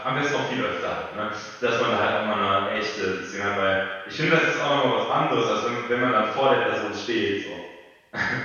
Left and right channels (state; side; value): identical; both; correlation 1.00